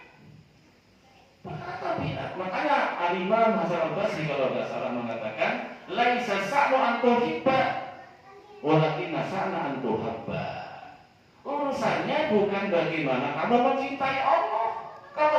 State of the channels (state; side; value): identical; both; correlation 1.00